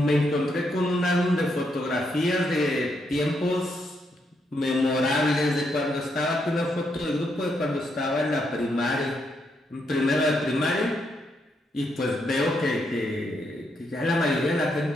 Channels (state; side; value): normal; both; correlation 0.78